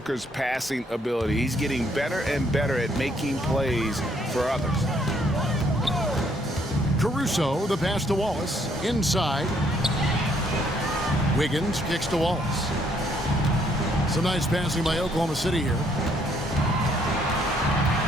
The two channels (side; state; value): both; normal; correlation 0.68